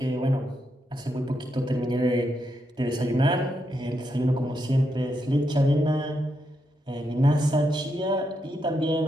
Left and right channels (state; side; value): normal; both; correlation 0.82